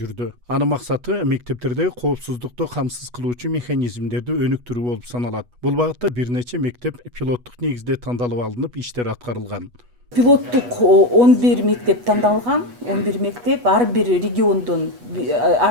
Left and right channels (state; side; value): late; left; 8.2 ms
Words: Анын максаты мектептердеги коопсуздукту камсыз кылуучу механизмдерди өнүктүрүү болуп саналат. Бул багытта бир нече мектеп пилоттук негизде тандалып алынып, иштер аткарылган. Пилоттук 11 мектеп тандалган, 11 мектеп, ар бир региондон,